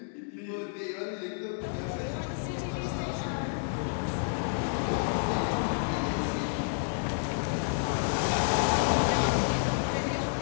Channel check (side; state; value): right; silent; digital silence